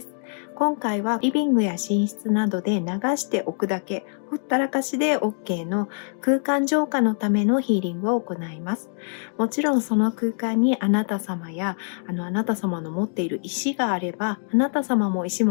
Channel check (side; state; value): right; silent; 59 dB below the other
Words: す。今回はリビングや寝室などで流しておくだけ、ほったらかしで OK の空間浄化のためのヒーリングを行います。もちろんその空間にあなた様やあなた様の持っている石があれば、あなた様も石